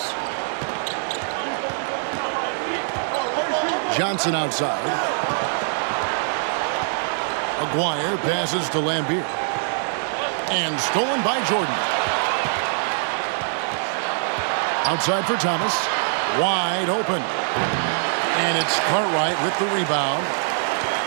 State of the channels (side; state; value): left; silent; 60 dB below the other